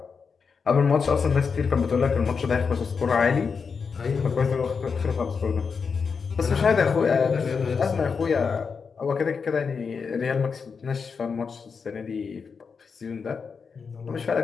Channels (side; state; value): right; quieter; 5.6 dB